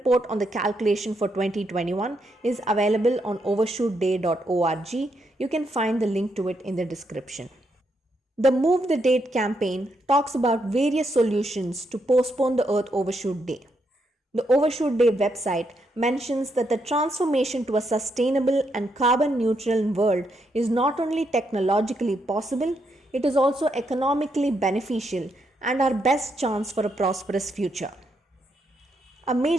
on the calculation for 2021 is available on overshootday.org. You can find the link to it in the description. The Move the Date campaign talks about various solutions to postpone the Earth Overshoot Day. The Overshoot Day website mentions that the transformation to a sustainable and carbon neutral world is not only technologically possible, it is also economically beneficial and our best chance for a prosperous future. A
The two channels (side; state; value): both; normal; correlation 0.79